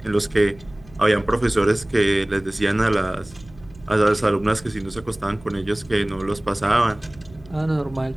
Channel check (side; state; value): right; noise; hum, 23 dB below the sound